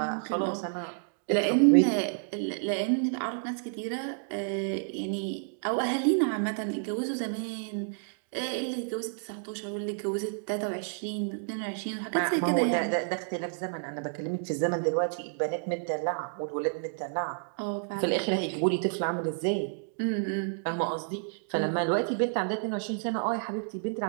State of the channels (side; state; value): left; silent; digital silence